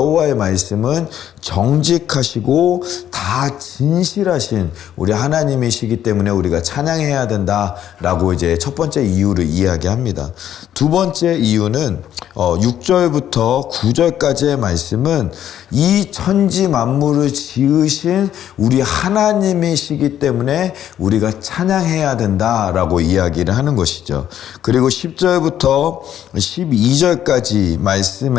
말씀은 정직하시고 다 진실하신 우리 하나님이시기 때문에 우리가 찬양해야 된다라고 이제 첫 번째 이유를 이야기합니다. 두 번째 이유는 6절부터 9절까지의 말씀은 이 천지 만물을 지으신 우리 하나님이시기 때문에 우리가 찬양해야 된다라고 이야기를 하는 것이죠. 그리고 10절부터 12절까지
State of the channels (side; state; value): right; quieter; 10.8 dB